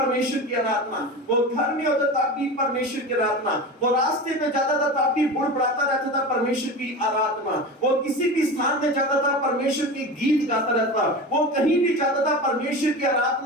की आराधना, वो घर में होता तब भी परमेश्वर की आराधना, वो रास्ते में जाता था तब भी बुड़बुड़ाता रहता था परमेश्वर की आराधना, वो किसी भी स्थान में जाता था परमेश्वर की गीत गाता रहता, वो कहीं भी जाता था परमेश्वर की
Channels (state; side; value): normal; both; correlation 0.28